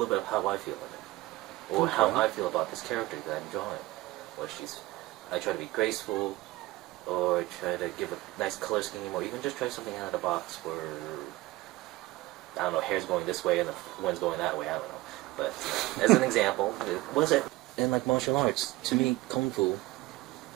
bit of how I feel in it, or how I feel about this character that I'm drawing. I try to be graceful, or try to give a nice color scheme, or even just try something out of the box where, I don't know, hair's going this way and the wind's going that way, I don't know. But as an example, was it in like martial arts? To me, Kung Fu,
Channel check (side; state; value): left; quieter; 18.9 dB